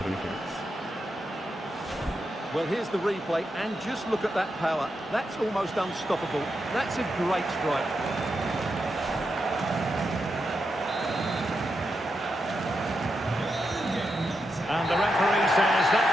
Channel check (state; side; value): normal; both; correlation 0.85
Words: Well, here's the replay, and just look at that power. That's almost unstoppable. That's a great strike. And the referee says that